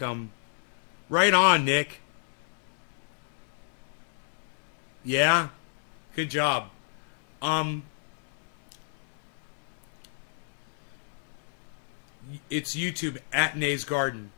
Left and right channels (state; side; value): silent; right; digital silence